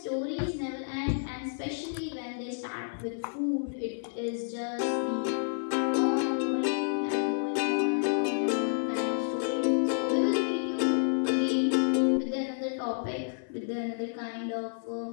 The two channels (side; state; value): right; silent; 58 dB below the other